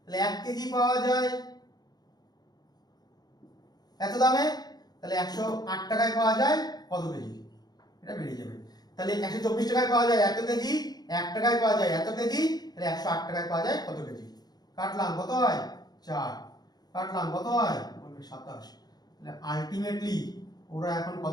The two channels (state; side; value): late; right; 0.19 ms